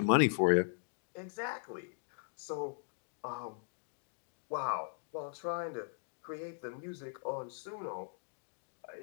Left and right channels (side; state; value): right; silent; digital silence